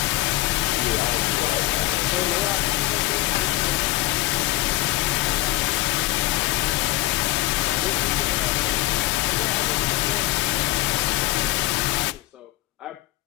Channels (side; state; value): right; quieter; 17.9 dB